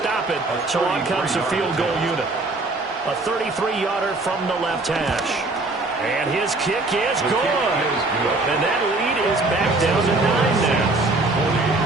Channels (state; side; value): quieter; left; 3.1 dB